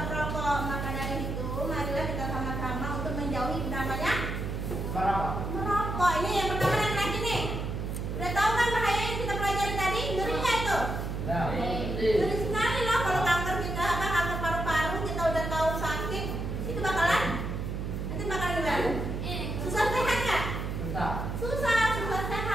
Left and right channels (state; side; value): noise; right; hum, 3 dB below the sound